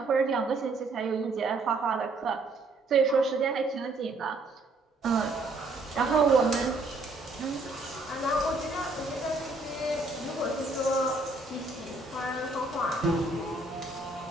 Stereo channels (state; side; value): quieter; left; 3.2 dB